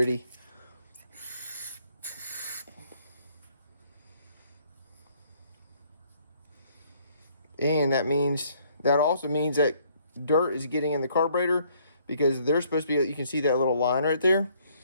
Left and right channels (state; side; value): inverted; both; correlation -0.64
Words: And that also means that dirt is getting in the carburetor, because there's supposed to be, you can see that little line right there.